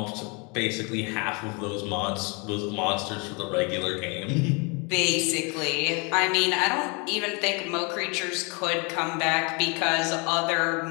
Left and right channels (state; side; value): quieter; right; 31.8 dB